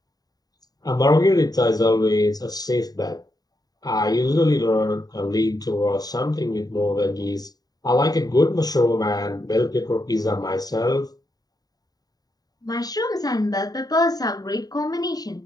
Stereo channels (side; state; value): right; late; 0.18 ms